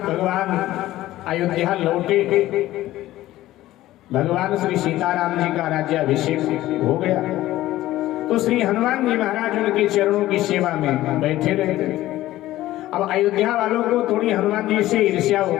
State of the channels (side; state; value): right; quieter; 15.4 dB